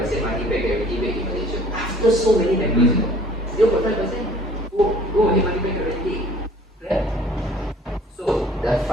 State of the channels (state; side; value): normal; both; correlation 0.53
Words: money back guarantee rate in Malaysia. After so many members, 0.5%. Go ahead, money back guarantee. Right? So